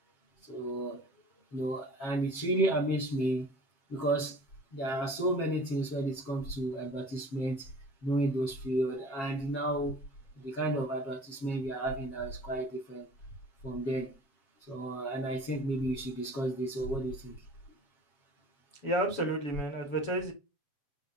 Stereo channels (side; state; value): right; late; 7.4 ms